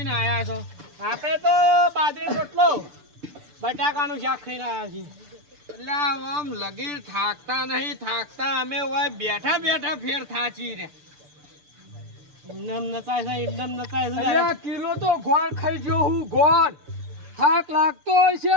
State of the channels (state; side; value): late; left; 6.8 ms